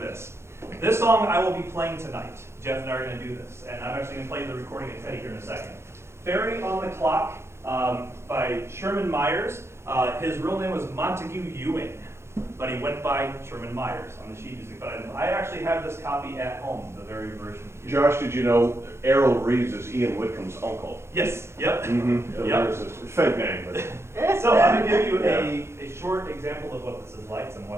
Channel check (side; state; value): left; late; 0.13 ms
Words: This song I will be playing tonight. Jeff and I are going to do this, and I'm actually going to play the recording of Teddy here in a second. Fairy on the Clock by Sherman Myers. His real name was Montague Ewing, but he went by Sherman Myers on the sheet music. But I actually have this copy at home, the very version. Josh, did you know Errol Reeves is Ian Whitcomb's uncle? Yes, yep. Mm-hmm. Yep. It's a fake name, but So I'm going to give you a short example of what this is like, so I'm